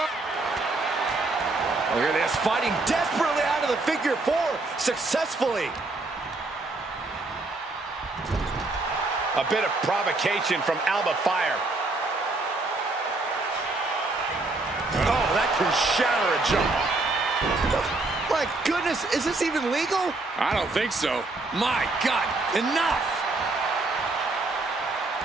Look at this, fighting desperately out of the figure 4 successfully. A bit of provocation from Alba Fire. Oh, that can shatter a jaw. My goodness, is this even legal? I don't think so. My God, enough!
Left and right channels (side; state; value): left; quieter; 3.2 dB